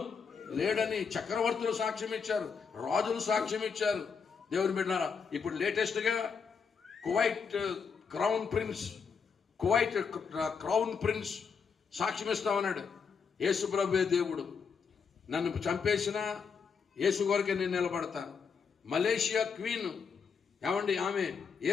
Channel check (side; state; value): right; quieter; 5.9 dB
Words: లేడని చక్రవర్తులు సాక్ష్యం ఇచ్చారు, రాజులు సాక్ష్యం ఇచ్చారు. దేవుని బిడ్డలారా, ఇప్పుడు లేటెస్ట్గా కువైట్ క్రౌన్ ప్రిన్స్ సాక్ష్యం ఇస్తామన్నాడు. యేసు ప్రభువే దేవుడు, నన్ను చంపేసిన యేసు కొరకే నేను నిలబడతాను. మలేషియా క్వీన్ ఏమండి, ఆమె